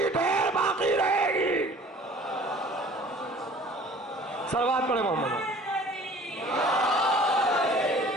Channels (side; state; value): both; normal; correlation 0.49